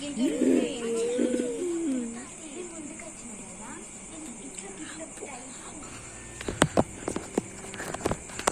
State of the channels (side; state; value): both; identical; correlation 1.00